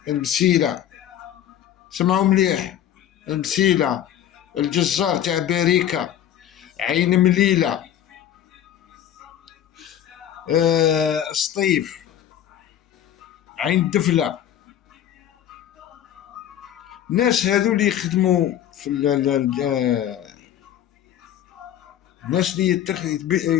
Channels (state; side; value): quieter; right; 10.7 dB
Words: سمعوا مليح، المسيلة، الجزار تاع باريكا، عين مليلة، سطيف، عين دفلة. الناس هذو اللي يخدموا في الناس